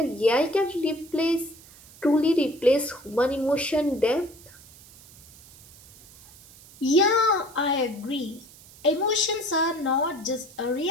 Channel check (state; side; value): noise; right; hiss, 22 dB below the sound